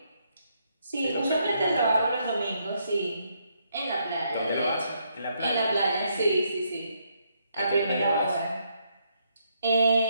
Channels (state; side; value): inverted; both; correlation -0.76